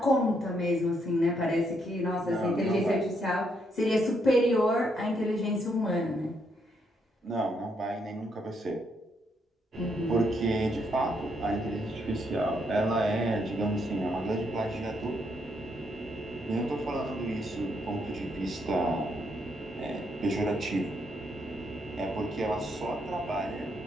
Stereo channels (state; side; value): normal; both; correlation 0.75